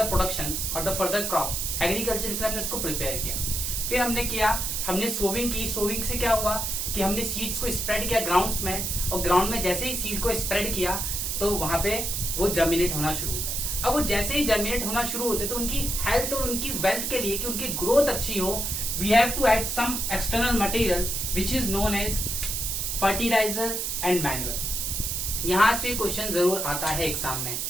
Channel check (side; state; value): right; noise; hiss, 1 dB below the sound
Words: प्रोडक्शन और द फर्दर क्रॉप। एग्रीकल्चर के लिए हमने उसको प्रिपेयर किया। फिर हमने सोविंग की। सोविंग से क्या हुआ कि हमने सीड्स को स्प्रेड किया ग्राउंड्स में, और ग्राउंड में जैसे ही सीड को स्प्रेड किया तो वहां पे वो जर्मिनेट होना शुरू हो गए। अब वो जैसे ही जर्मिनेट होना शुरू होते तो उनकी हेल्थ और उनकी वेल्थ के लिए, कि उनकी ग्रोथ अच्छी हो, we have to add some external material which is known as fertilizer and manual. यहां से क्वेश्चन जरूर आता है एग्जाम में,